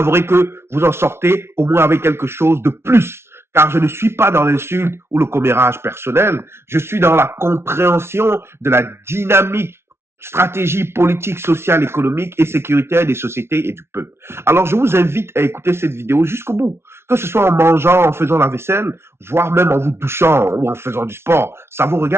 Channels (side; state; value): left; late; 0.12 ms